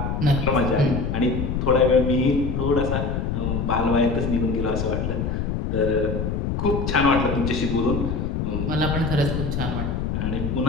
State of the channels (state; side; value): noise; left; rumble, 1 dB below the sound